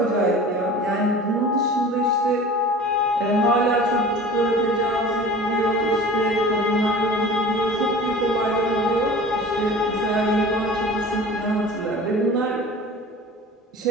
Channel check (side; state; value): both; normal; correlation 0.40